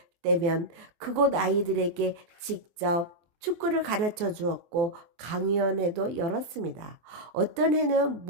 때면 그곳 아이들에게 직접 축구를 가르쳐 주었고 강연회도 열었습니다. 어떤 해는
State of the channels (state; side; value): late; left; 24 ms